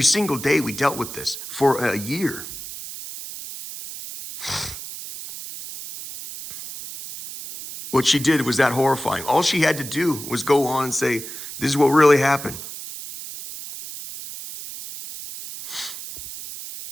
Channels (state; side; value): noise; right; hiss, 10 dB below the sound